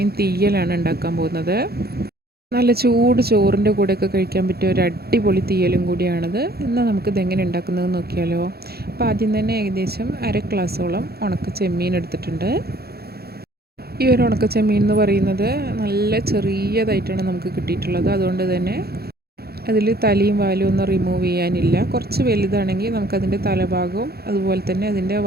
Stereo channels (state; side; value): late; left; 0.46 ms